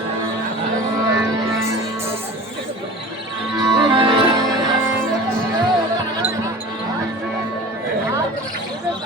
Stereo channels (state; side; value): normal; both; correlation 0.38